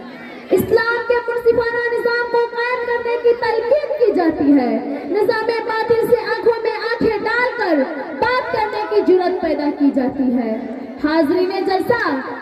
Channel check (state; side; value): identical; both; correlation 1.00